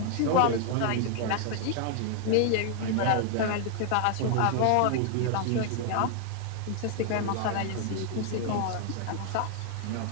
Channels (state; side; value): different; both; correlation 0.00